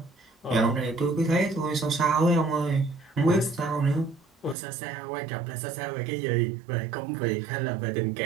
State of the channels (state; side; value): drops out; left; at 4.5 s